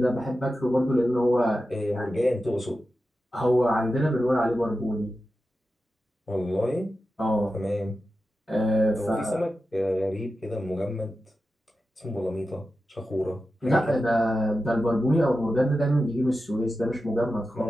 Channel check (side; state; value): both; normal; correlation 0.92